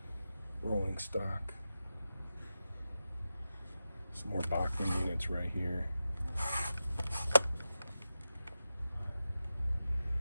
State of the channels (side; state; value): both; inverted; correlation -0.91